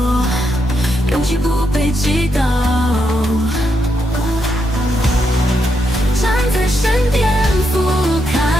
勇气不被击倒，站在山巅俯瞰，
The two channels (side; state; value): both; normal; correlation 0.81